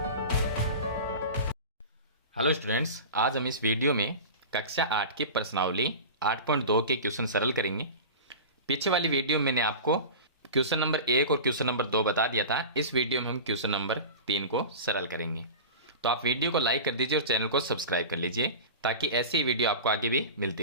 हेलो स्टूडेंट्स, आज हम इस वीडियो में कक्षा 8 की प्रश्नावली 8.2 के क्वेश्चन सरल करेंगे। पीछे वाली वीडियो में मैंने आपको क्वेश्चन नंबर 1 और क्वेश्चन नंबर 2 बता दिया था। इस वीडियो में हम क्वेश्चन नंबर 3 को सरल करेंगे। तो आप वीडियो को लाइक कर दीजिए और चैनल को सब्सक्राइब कर लीजिए ताकि ऐसी ही वीडियो आपको आगे भी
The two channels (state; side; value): inverted; both; correlation -0.31